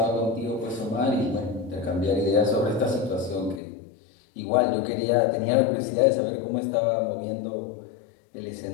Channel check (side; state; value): right; drops out; at 3.6 s